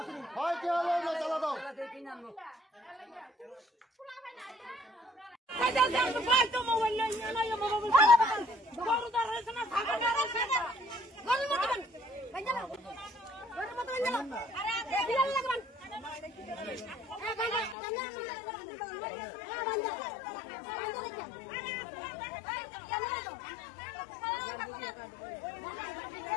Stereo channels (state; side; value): drops out; right; at 17.8 s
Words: হয় কি হলো তালা দাও